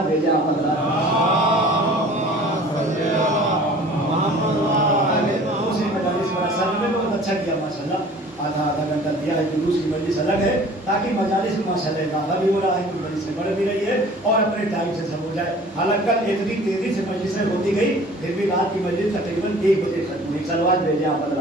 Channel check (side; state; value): both; normal; correlation 0.47